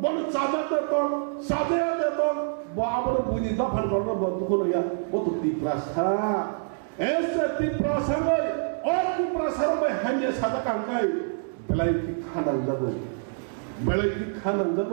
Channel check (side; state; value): left; silent; digital silence